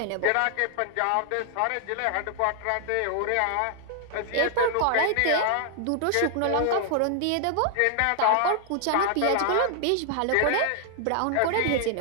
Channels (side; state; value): both; different; correlation 0.00